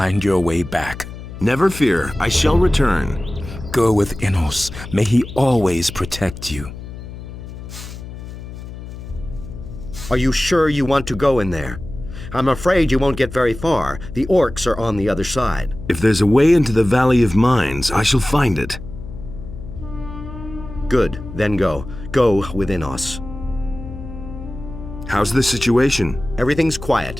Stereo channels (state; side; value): noise; left; hum, 12 dB below the sound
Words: your way back. Never fear, I shall return. Go with Enos. May he always protect you. Are you sure you want to go in there? I'm afraid you won't get very far. The orcs are on the other side. If there's a way into the Valley of Mines, I shall find it. Good, then go. Go with Enos. How's the situation? Everything's